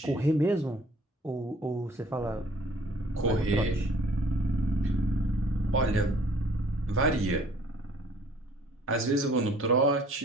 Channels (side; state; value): both; normal; correlation 0.55